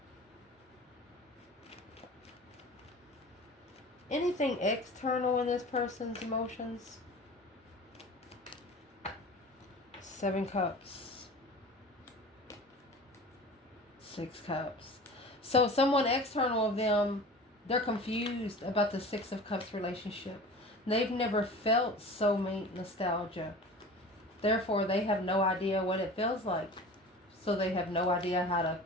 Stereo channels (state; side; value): normal; both; correlation 0.38